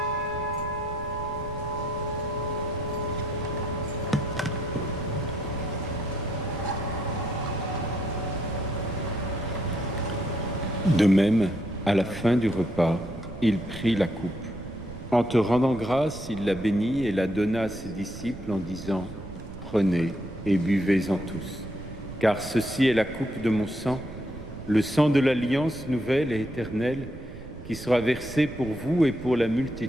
De même, à la fin du repas, il prit la coupe. En te rendant grâce, il la bénit et la donna à ses disciples en disant « Prenez et buvez-en tous, car ceci est la coupe de mon sang, le sang de l'alliance nouvelle et éternelle, qui sera versé pour vous et pour la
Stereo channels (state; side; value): noise; right; rumble, 14 dB below the sound